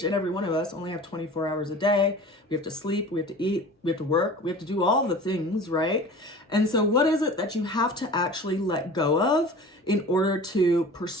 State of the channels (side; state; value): both; normal; correlation 0.40